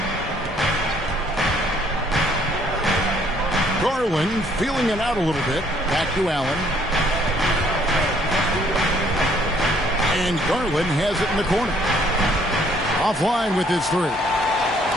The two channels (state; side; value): normal; both; correlation 0.64